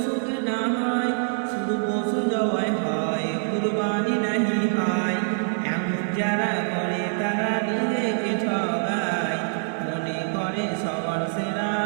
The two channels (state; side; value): silent; left; 62 dB below the other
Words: কেনা হয়, শুধু পশু জবাই হয়, কুরবানি নাহি হয়। এমন যারা করে তারা নিজেকে ঠগায়, মনে করে সবার সেরা